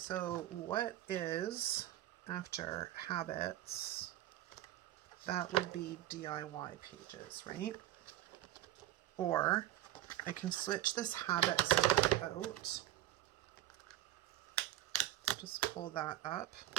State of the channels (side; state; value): left; quieter; 14.2 dB